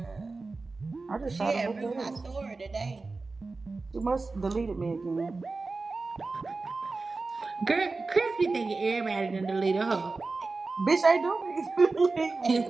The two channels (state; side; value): quieter; left; 3.8 dB